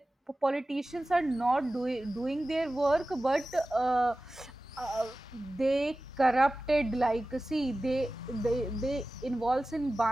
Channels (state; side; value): normal; both; correlation 0.96